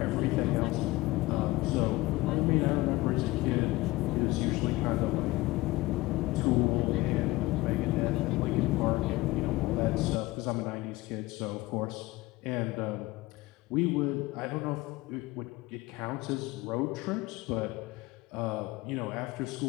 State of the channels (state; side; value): quieter; right; 19.8 dB